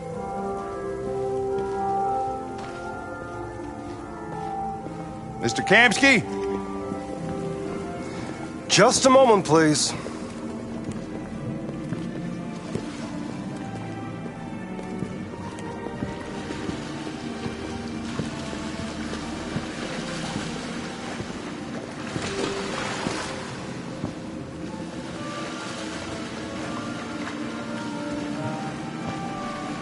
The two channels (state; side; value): identical; both; correlation 1.00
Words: Mr. Kamsky? Just a moment, please.